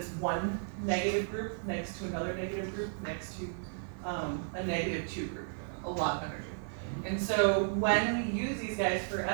one negative group next to another negative group next to a negative 2 group, a lot of energy. And so when we use these guys for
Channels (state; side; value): silent; left; digital silence